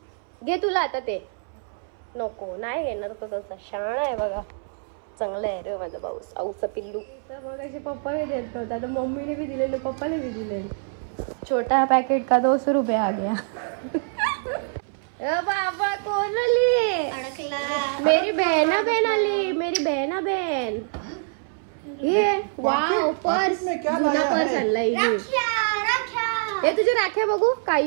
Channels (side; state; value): left; silent; 62 dB below the other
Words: घे तुला आता ते. नको नाही घेणार तो तसा. शाळा आहे बघा, चांगला आहे रे माझा भाऊ. आऊचा पिल्लू. तर मग असे पप्पा बी देत नव्हता, आता मम्मीने बी दिलेलं, पप्पाने बी दिले. छोटा पैकेट का 200 रुपये आ गया. बाबा कोण आली? अडकला. मेरी बहना बहन आली, मेरी बहना बहन. ये वाव, पर्स. जुना पर्स आणलाय. हे तुझ्या राख्या बघू काय